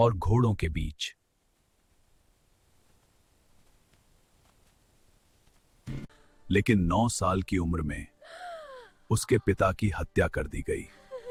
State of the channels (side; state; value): both; identical; correlation 1.00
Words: घोड़ों के बीच। लेकिन 9 साल की उम्र में उसके पिता की हत्या कर दी गई।